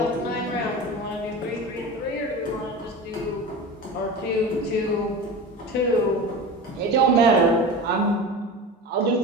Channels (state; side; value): normal; both; correlation 0.30